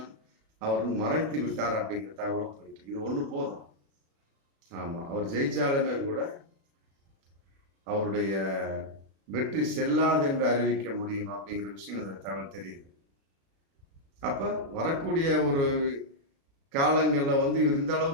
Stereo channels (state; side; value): late; left; 36 ms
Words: அவர் வந்து மறைத்து விட்டார் அப்படிங்கிற தகவலும் போயிட்டு இது ஒண்ணு போதும். ஆமா, அவர் ஜெயிச்சாலுமே கூட அவருடைய வெற்றி செல்லாது என்று அறிவிக்க முடியும் அப்படிங்கிற விஷயம் இந்த தகவல் தெரியுது. அப்ப வரக்கூடிய ஒரு காலங்கள்ல வந்து இவர் இந்த